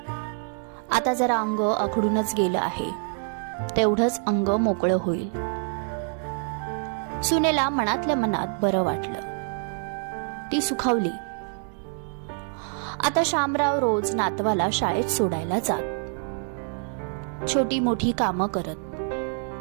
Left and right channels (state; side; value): silent; left; 58 dB below the other